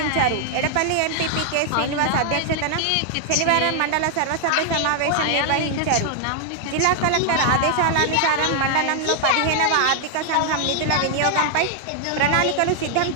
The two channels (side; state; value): both; different; correlation 0.00